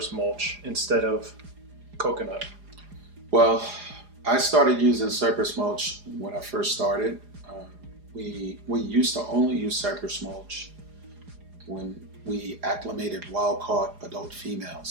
mulch instead of coconut? Well, I started using cypress mulch when I first started. We used to only use cypress mulch when we acclimated wild-caught adult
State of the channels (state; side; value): late; left; 4.9 ms